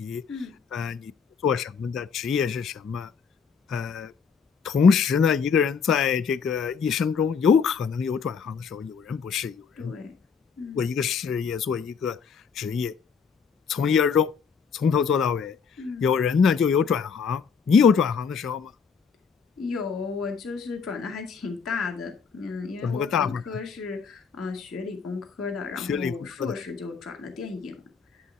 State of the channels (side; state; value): right; quieter; 6.1 dB